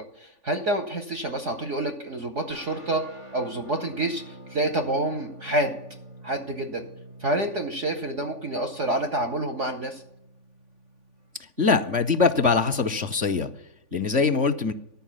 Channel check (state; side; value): late; left; 3.5 ms